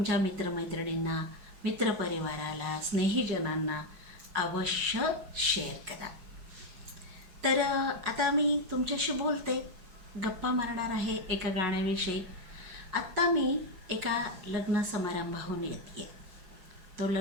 मित्रमैत्रिणींना, मित्रपरिवाराला, स्नेहीजनांना अवश्य शेअर करा. तर आता मी तुमच्याशी बोलते, गप्पा मारणार आहे एका गाण्याविषयी. आत्ता मी एका लग्न समारंभाहून येते आहे. तो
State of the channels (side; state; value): left; late; 5.4 ms